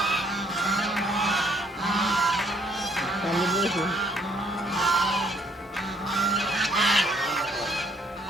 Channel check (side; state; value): both; normal; correlation 0.65